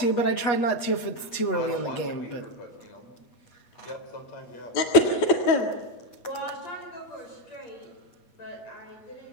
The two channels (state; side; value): late; right; 8.3 ms